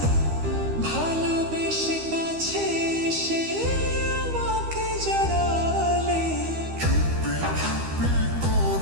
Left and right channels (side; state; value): left; late; 13 ms